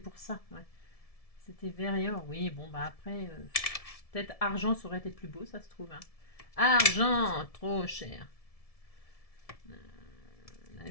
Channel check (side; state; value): right; late; 1.7 ms